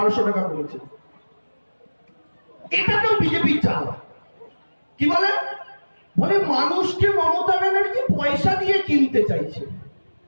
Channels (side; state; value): both; inverted; correlation -1.00